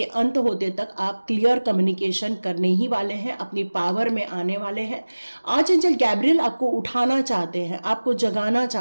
अंत होते तक आप क्लियर कम्युनिकेशन करने ही वाले हैं, अपनी पावर में आने वाले हैं। आर्चएंजल गैब्रियल आपको उठाना चाहते हैं, आपको जगाना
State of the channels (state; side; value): inverted; both; correlation -1.00